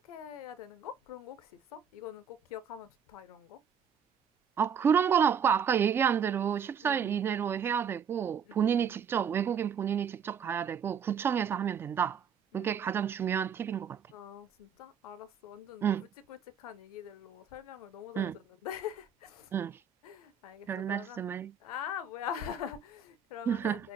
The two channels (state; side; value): quieter; left; 6.7 dB